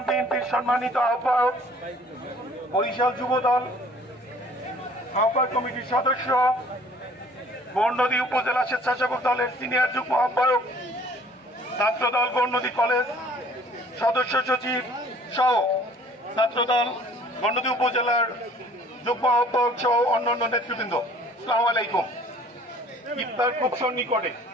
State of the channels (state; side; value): normal; both; correlation 0.54